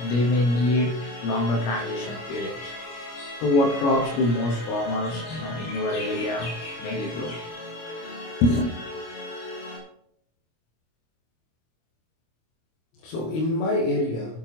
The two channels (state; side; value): late; right; 25 ms